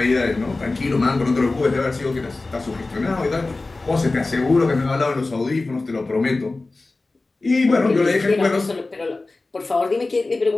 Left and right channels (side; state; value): right; quieter; 3.3 dB